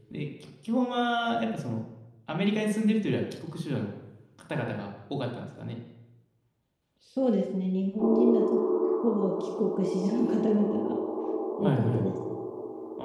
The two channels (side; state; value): both; identical; correlation 1.00